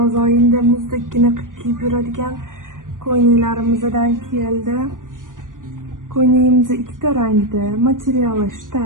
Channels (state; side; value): late; left; 0.89 ms